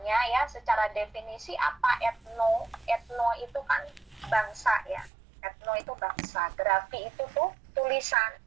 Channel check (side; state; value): left; drops out; at 5.1 s